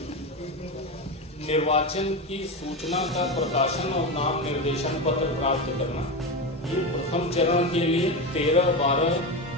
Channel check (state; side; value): normal; both; correlation 0.18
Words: निर्वाचन की सूचना का प्रकाशन और नाम निर्देशन पत्र प्राप्त करना, ये प्रथम चरण के लिए